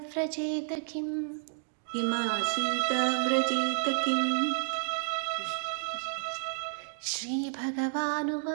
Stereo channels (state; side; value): silent; left; digital silence